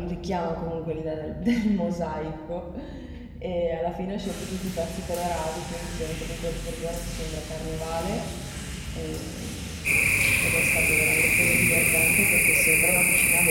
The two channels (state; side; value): identical; both; correlation 1.00